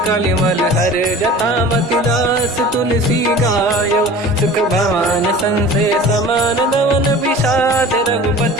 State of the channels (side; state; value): both; normal; correlation 0.41